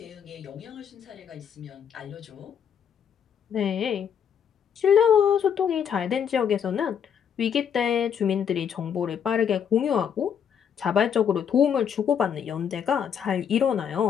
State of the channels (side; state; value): right; quieter; 8.0 dB